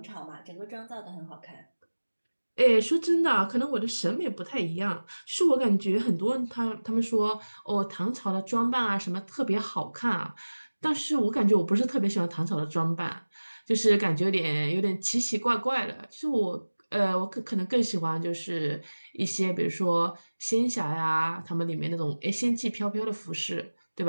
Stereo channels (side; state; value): both; inverted; correlation -1.00